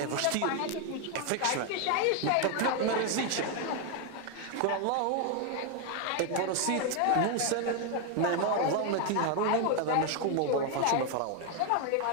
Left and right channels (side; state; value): both; different; correlation 0.01